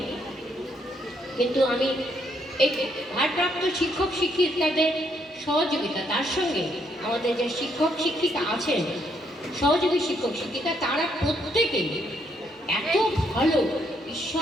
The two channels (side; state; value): both; normal; correlation 0.73